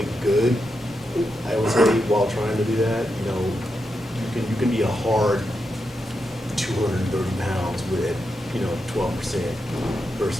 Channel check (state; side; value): normal; both; correlation 0.86